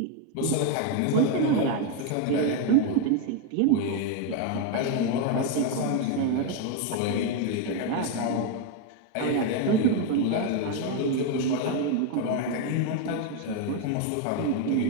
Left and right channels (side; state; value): both; different; correlation 0.01